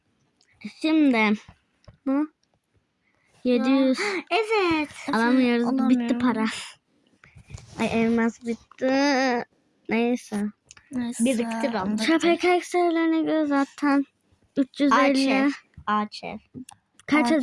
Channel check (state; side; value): identical; both; correlation 1.00